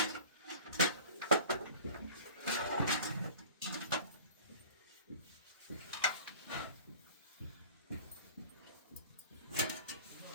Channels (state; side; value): inverted; both; correlation -0.42